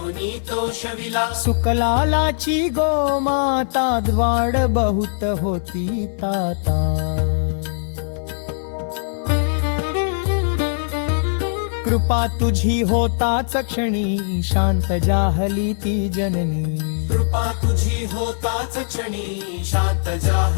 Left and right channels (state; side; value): silent; right; 61 dB below the other